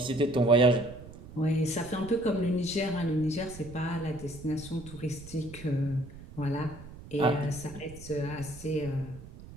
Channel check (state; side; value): noise; right; rumble, 16 dB below the sound